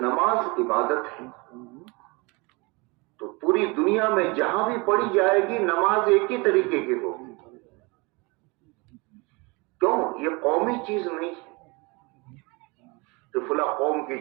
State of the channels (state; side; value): quieter; left; 27.2 dB